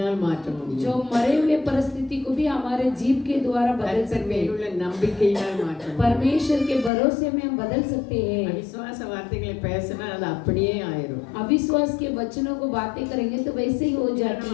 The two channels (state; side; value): drops out; right; at 6.9 s